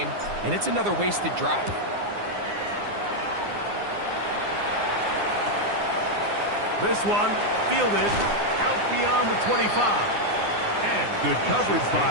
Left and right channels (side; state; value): left; late; 9.7 ms